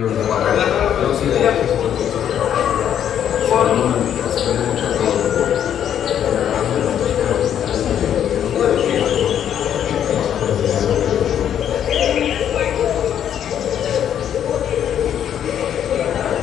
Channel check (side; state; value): right; quieter; 9.6 dB